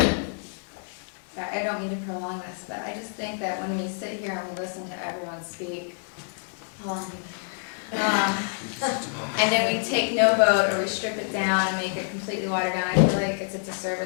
I don't mean to prolong this, but I just think that when we sit here and we listen to everyone speak, and then we take no vote, or we strip it down and make it completely watered down, I feel like it's a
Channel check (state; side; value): silent; right; 60 dB below the other